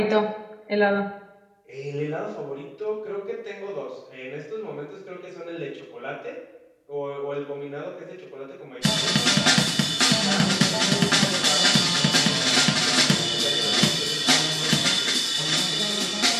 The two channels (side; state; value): both; identical; correlation 1.00